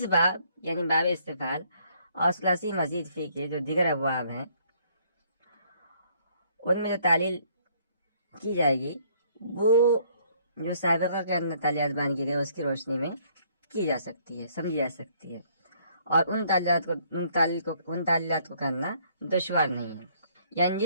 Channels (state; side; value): inverted; both; correlation -0.64